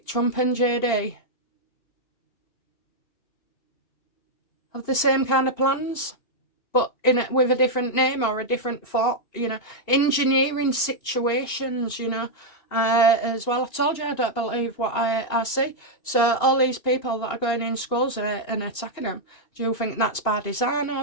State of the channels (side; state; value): right; late; 2.8 ms